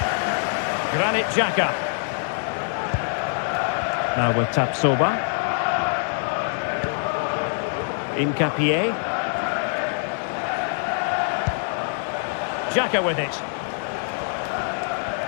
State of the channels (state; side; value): silent; right; 62 dB below the other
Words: Granit Xhaka. Now with Tapsoba. Incapié. Xhaka with it.